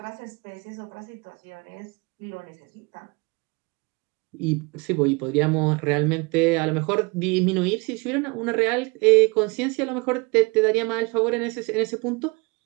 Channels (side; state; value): left; quieter; 28.2 dB